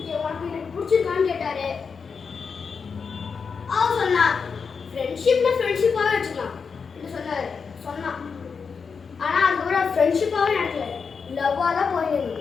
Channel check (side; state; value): right; quieter; 5.6 dB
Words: உனக்கு எனக்கு பிடிச்சிருக்கான்னு கேட்டாரு. அவர் சொன்னா ஃப்ரெண்ட்ஷிப்னா ஃப்ரெண்ட்ஷிப்பாகவே வச்சுக்கலாம் சொன்னான். ஆனால் அதுக்கப்புறம் ஃப்ரெண்ட்ஷிப்பாகவே நடக்கல, லவ்வாக தான்